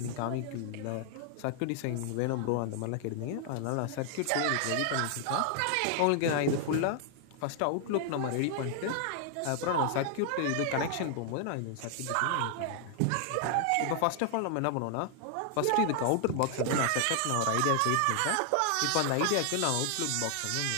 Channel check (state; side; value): different; both; correlation 0.00